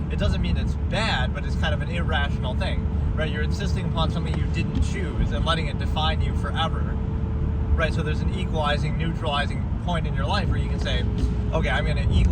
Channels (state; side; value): identical; both; correlation 1.00